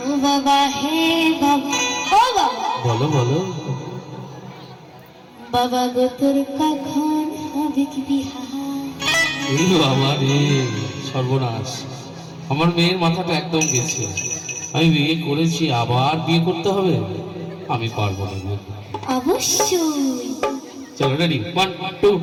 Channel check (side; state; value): both; identical; correlation 1.00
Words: বাবা হে বাবা, ও বাবা, বলো বলো বাবা গো তোর কখন হবে কি বিহা? এই বাবা রে, সর্বনাশ, আমার মেয়ের মাথাটা একদম গেছে। আমি বিয়ে করেছি, আবার বিয়ে করতে হবে? আমি পারবো না। অবশ্যই। চলো রেডি, 1 2